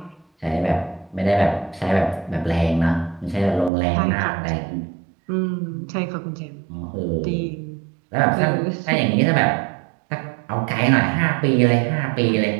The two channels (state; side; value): drops out; left; at 3.7 s